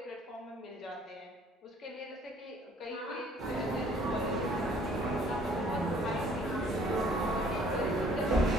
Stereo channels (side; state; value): both; normal; correlation 0.58